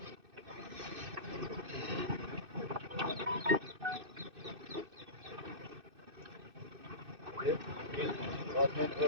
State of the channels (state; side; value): late; left; 2.6 ms